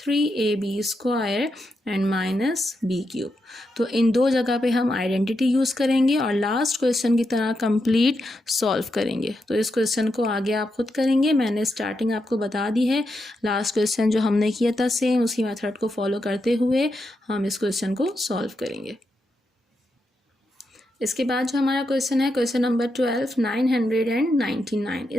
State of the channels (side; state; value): both; normal; correlation 0.84